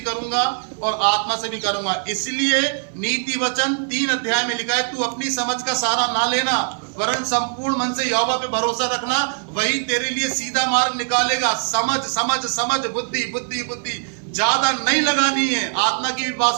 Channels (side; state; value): left; silent; 58 dB below the other